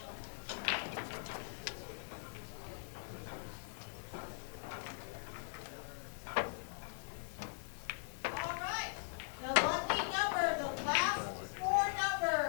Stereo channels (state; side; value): silent; right; 51 dB below the other